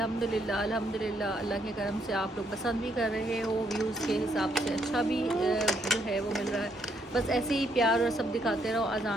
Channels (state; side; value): normal; both; correlation 0.73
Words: अल्हम्दुलिल्लाह। अल्लाह के करम से आप लोग पसंद भी कर रहे हो, व्यूज़ के हिसाब से अच्छा भी जो है वो मिल रहा है। बस ऐसे ही प्यार और सब दिखाते रहो।